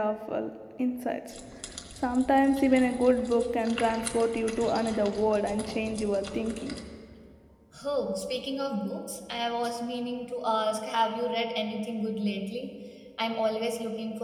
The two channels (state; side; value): identical; both; correlation 1.00